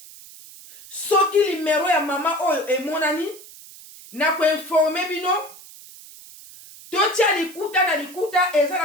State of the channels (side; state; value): right; noise; hiss, 19 dB below the sound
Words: soki limero ya mama oyo emonani na ko informer bino totia likuta na likuta